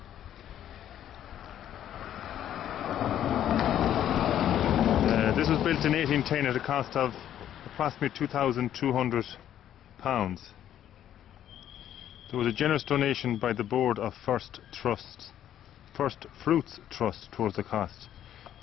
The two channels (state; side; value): quieter; right; 10.9 dB